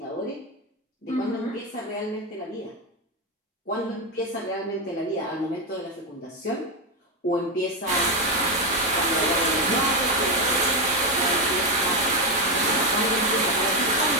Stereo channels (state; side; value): normal; both; correlation 0.08